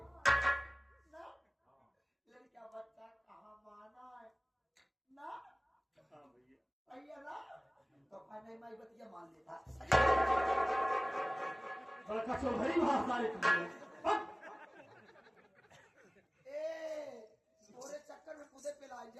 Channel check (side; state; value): both; identical; correlation 1.00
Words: ना लड़कियां बच्चा कहाँ माना है ना हाँ भैया भैया ना तो कहने माई बतिया मान लेता बड़का चौधरी भाषा थोड़े चक्कर में कूदे पे ला